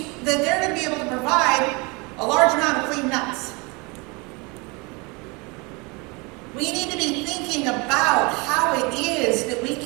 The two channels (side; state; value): left; quieter; 28.1 dB